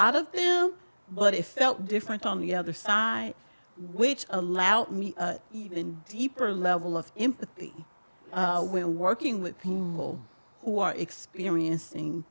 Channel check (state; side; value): inverted; both; correlation -1.00